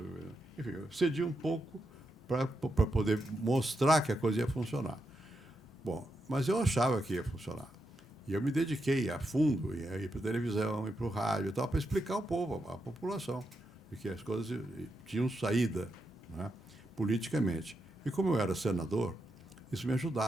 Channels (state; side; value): normal; both; correlation 0.84